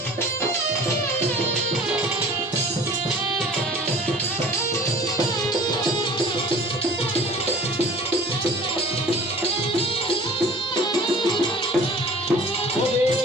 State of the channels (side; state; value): both; normal; correlation 0.46